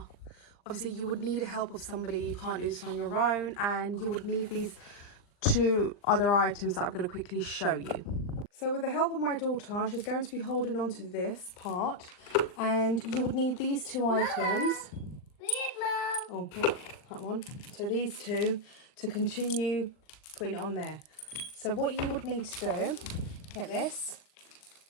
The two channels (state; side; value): late; right; 39 ms